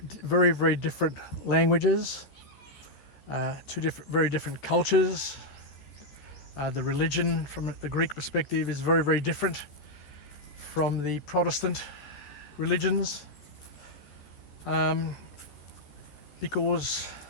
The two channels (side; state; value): right; late; 14 ms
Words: very, very different languages, 2 very different cultures. The religion from the Greek perspective is very, very different from the Protestant religions, because